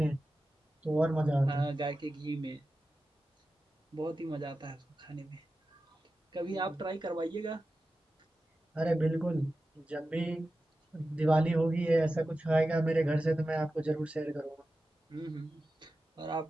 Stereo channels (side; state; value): both; normal; correlation 0.93